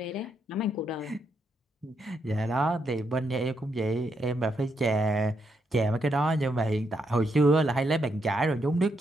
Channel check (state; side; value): normal; both; correlation 0.79